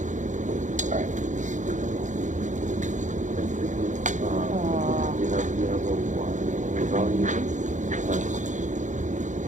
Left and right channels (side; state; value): left; late; 0.36 ms